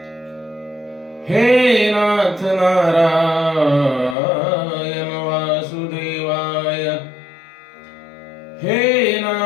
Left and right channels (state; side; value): drops out; right; at 4.2 s